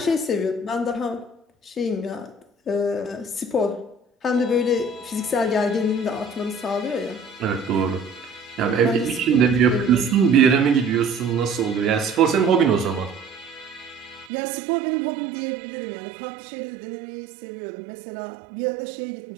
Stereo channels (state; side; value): drops out; left; at 14.3 s